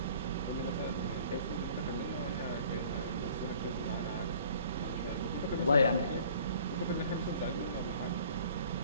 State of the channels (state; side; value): inverted; both; correlation -0.52